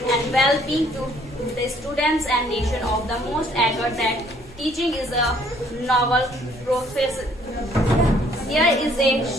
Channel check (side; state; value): both; normal; correlation 0.62